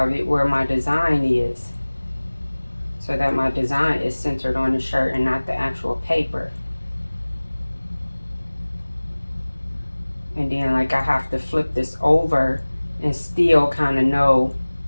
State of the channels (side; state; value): both; inverted; correlation -1.00